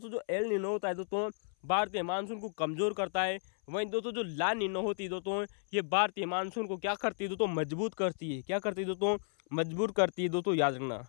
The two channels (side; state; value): right; silent; 55 dB below the other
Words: जो एल नीनो होता है दोस्तों भारतीय मानसून को कमज़ोर करता है, वहीं दोस्तों जो ला नीनो होती है दोस्तों ये भारतीय मानसून को क्या करती है दोस्तों, मजबूत करती है। क्या करती है दोस्तों, मजबूत करती है दोस्तों, याद रखना,